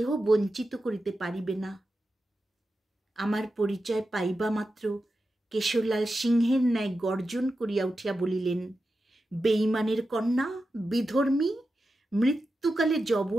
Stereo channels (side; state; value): both; normal; correlation 0.91